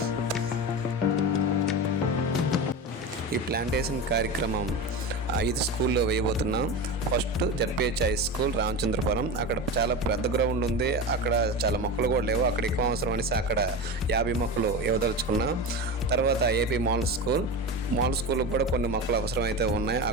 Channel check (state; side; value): normal; both; correlation 0.24